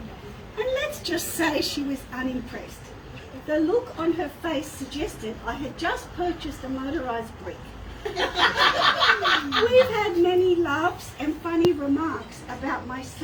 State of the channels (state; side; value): identical; both; correlation 1.00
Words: and let's just say she was unimpressed. The look on her face suggested I had just purchased a motorised brick. We've had many laughs and funny remarks about my